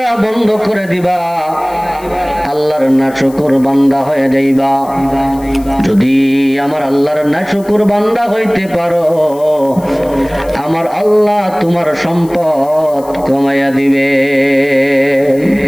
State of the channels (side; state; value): left; noise; hiss, 23 dB below the sound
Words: বন্ধ করে দিবা, আল্লাহর নাশকর বান্দা হয়ে যাইবা। যদি আমার আল্লাহর নাশকর বান্দা হইতে পারো, আমার আল্লাহ তোমার সম্পদ কমাইয়া দিবে।